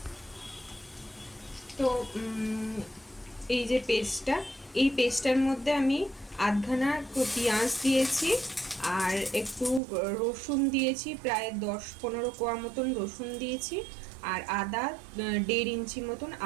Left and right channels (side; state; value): left; drops out; at 9.8 s